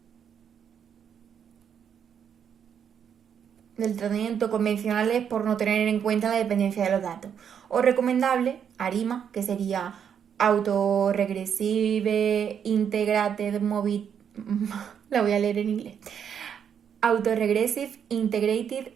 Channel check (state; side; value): quieter; left; 8.0 dB